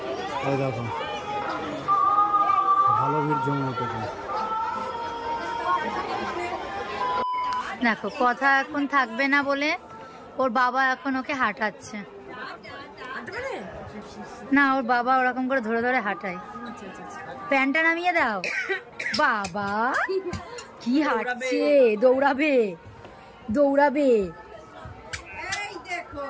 এই দেখো ভালো ভিড় জমে উঠেছে। দেখো কথা এখন থাকবে না বলে ওর বাবা এখন ওকে হাঁটাচ্ছে। না ওর বাবা ওরকম করে ধরে ধরে হাঁটায়। প্যান্টটা নামিয়ে দাও। বাবা কি হাঁটছে, দৌড়াবে দৌড়াবে। এই দেখো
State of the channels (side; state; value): both; identical; correlation 1.00